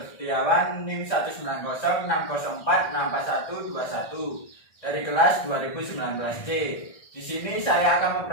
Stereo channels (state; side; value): late; right; 1.6 ms